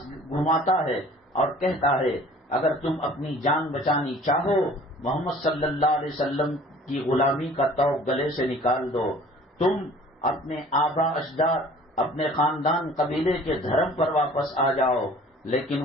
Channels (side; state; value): both; normal; correlation 0.49